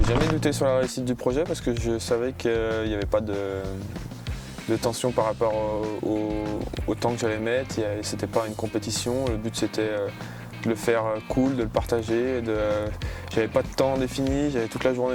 jamais douté sur la réussite du projet parce que je savais qu'il n'y avait pas de tension par rapport au temps que j'allais mettre. C'était pas une compétition, le but c'était de le faire cool, de le partager. J'avais pas de temps défini, j'avais toute la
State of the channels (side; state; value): both; identical; correlation 1.00